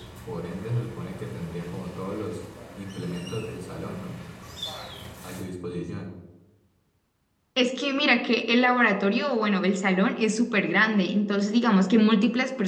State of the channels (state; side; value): identical; both; correlation 1.00